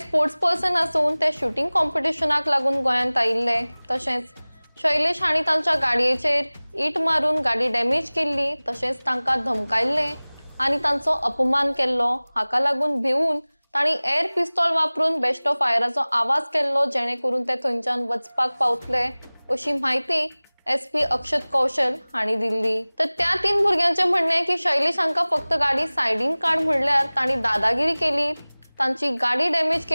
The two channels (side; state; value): both; inverted; correlation -1.00